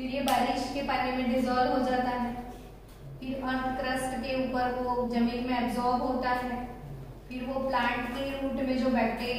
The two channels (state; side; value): identical; both; correlation 1.00